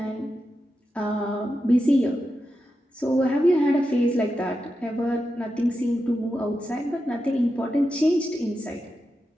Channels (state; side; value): normal; both; correlation 0.89